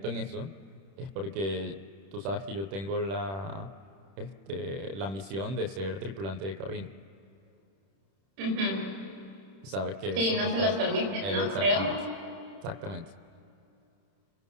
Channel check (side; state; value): left; late; 31 ms